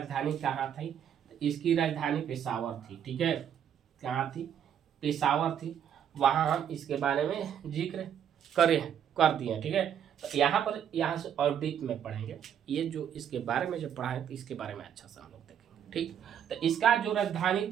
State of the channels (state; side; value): quieter; left; 9.1 dB